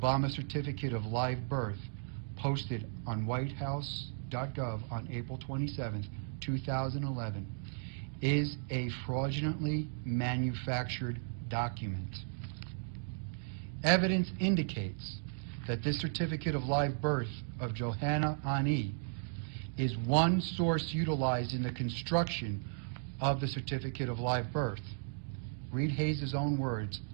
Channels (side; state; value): left; silent; digital silence